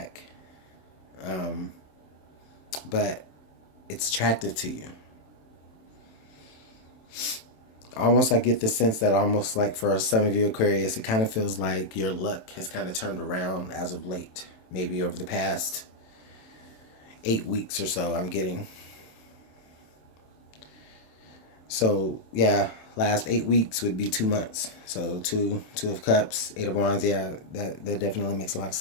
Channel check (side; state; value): right; late; 27 ms